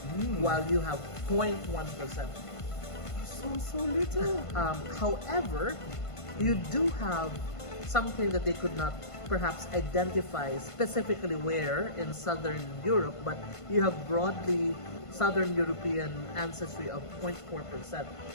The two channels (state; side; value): late; right; 1.5 ms